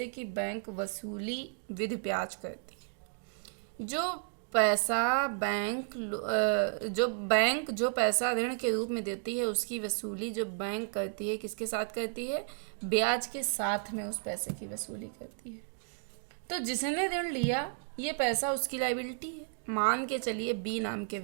की बैंक वसूली विद ब्याज करती है। जो पैसा बैंक जो पैसा ऋण के रूप में देती है उसकी वसूली जो बैंक करती है किसके साथ करती है? ब्याज के साथ में उस पैसे की वसूली करती है। तो जिसने ऋण लिया ये पैसा उसकी लायबिलिटी है। मान के चलिए बी नाम के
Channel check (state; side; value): silent; left; digital silence